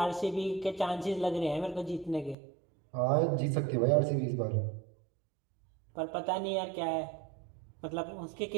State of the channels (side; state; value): left; drops out; at 2.4 s